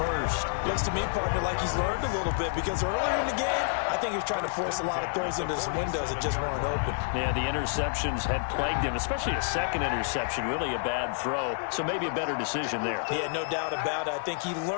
Looks to me, partner, like he's learned a little bit because earlier in the game, I think he was trying to force a lot of throws into his windows that just weren't open. Yeah, the interceptions had plagued him, especially a second interception, really a bad throw. So maybe a better decision there. Yeah, no doubt about it. I think he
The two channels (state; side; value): silent; right; digital silence